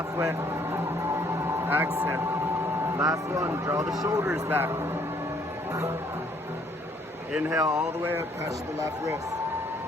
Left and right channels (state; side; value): normal; both; correlation 0.64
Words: Exhale. Last one, draw the shoulders back. Inhale all the way up, touch the left wrist.